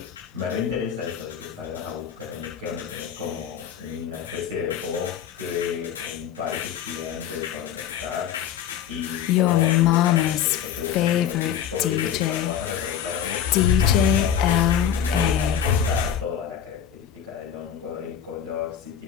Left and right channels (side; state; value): right; quieter; 9.0 dB